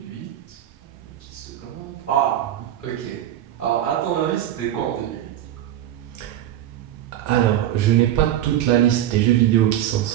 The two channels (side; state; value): left; quieter; 12.0 dB